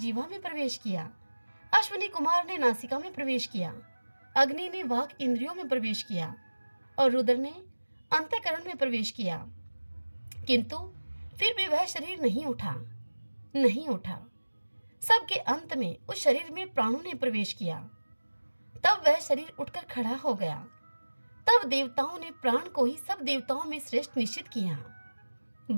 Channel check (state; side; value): inverted; both; correlation -1.00